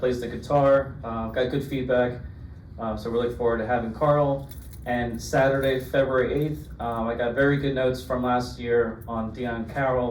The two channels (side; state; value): both; identical; correlation 1.00